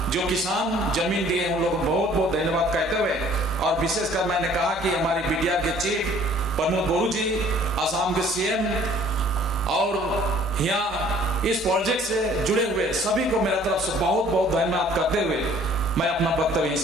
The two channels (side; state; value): both; normal; correlation 0.55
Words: जो किसान जमीन दिए उन लोगों को बहुत बहुत धन्यवाद कहते हुए, और विशेषकर मैंने कहा कि हमारी बीटीआर के चीफ प्रमोद बोरू जी, असम के सीएम, और यहाँ इस प्रोजेक्ट से जुड़े हुए सभी को मेरा तरफ से बहुत बहुत धन्यवाद करते हुए मैं अपना वक्तव्य